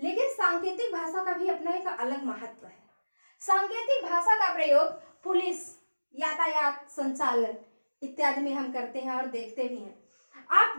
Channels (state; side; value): inverted; both; correlation -1.00